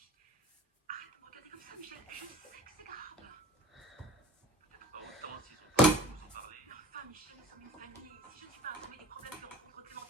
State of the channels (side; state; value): both; normal; correlation 0.46